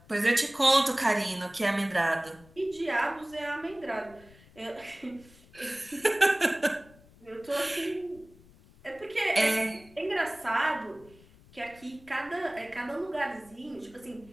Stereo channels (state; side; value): noise; left; rumble, 25 dB below the sound